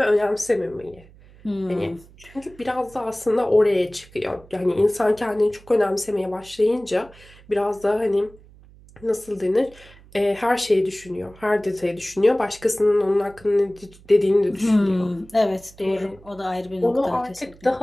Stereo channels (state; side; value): noise; right; hum, 24 dB below the sound